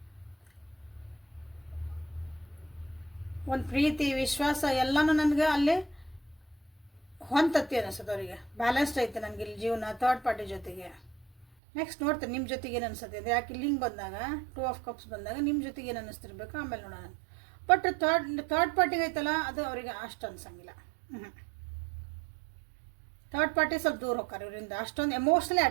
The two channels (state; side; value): drops out; left; at 11.5 s